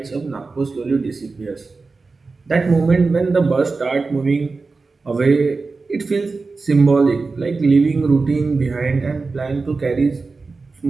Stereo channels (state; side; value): quieter; left; 4.0 dB